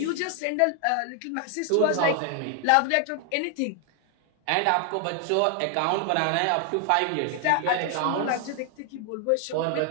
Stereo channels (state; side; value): different; both; correlation 0.00